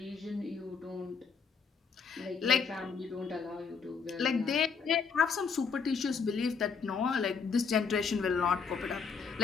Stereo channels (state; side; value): quieter; right; 5.7 dB